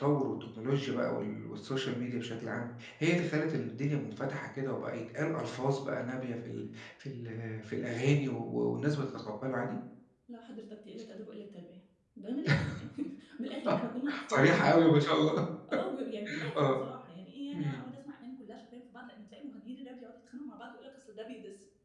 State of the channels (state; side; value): identical; both; correlation 1.00